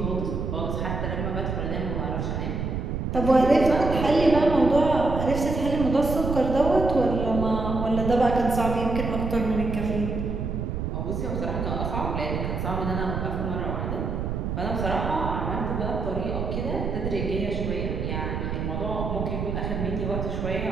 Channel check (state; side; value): noise; right; rumble, 3 dB below the sound